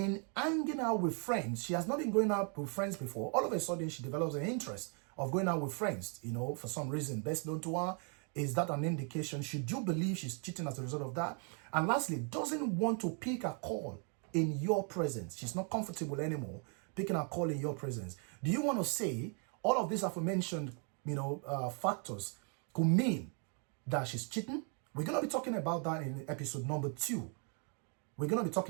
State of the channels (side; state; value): left; quieter; 39.7 dB